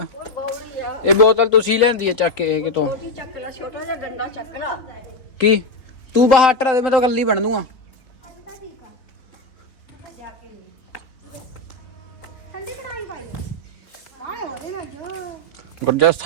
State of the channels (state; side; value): late; right; 3.8 ms